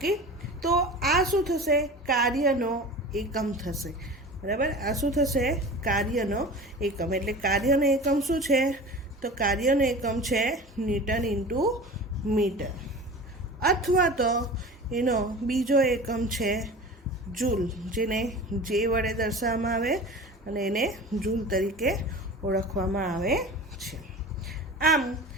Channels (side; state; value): both; normal; correlation 0.36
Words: તો આ શું થશે? કાર્યનો એકમ થશે, બરાબર. આ શું થશે? કાર્યનો એકમ. એટલે કાર્યનો એકમ શું છે? તો કાર્યનો એકમ છે ન્યૂટન ઇન્ટુ મીટર, અથવા તો એનો બીજો એકમ છે જૂલ, જેને જે વડે દર્શાવવામાં આવે અને એને જૂલ તરીકે ઓળખવામાં આવે છે. આમ